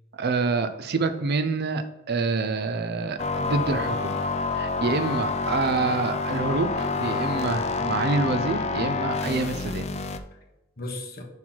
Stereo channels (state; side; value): normal; both; correlation 0.18